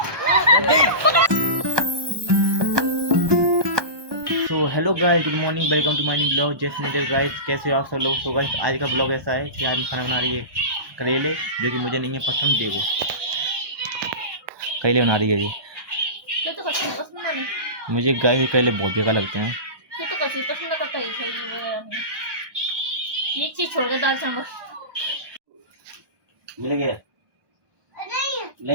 तो hello guys, good morning, welcome to my new blog. Just नीडर गाइस, कैसे हो आप सब लोग। तो गाइस आज का ब्लॉग ऐसा है कि आज मैं खाना बना रही है करेले, जो कि मुझे नहीं है पसंद। देखो करेले बना रही है जी। तो पसंद नहीं। मुझे गाइस करेले बहुत बेकार लगते हैं। तो कभी पसंद करता ही सही ये चीज छोड़ के दाल चावल मिल गया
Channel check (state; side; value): late; left; 1.2 ms